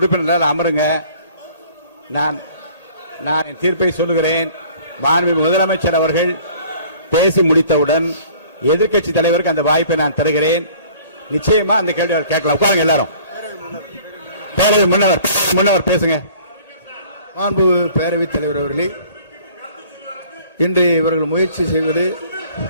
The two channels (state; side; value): inverted; both; correlation -0.52